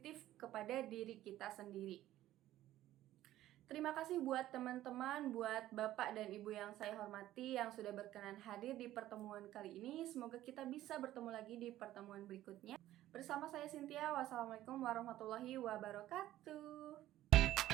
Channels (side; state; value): left; quieter; 14.1 dB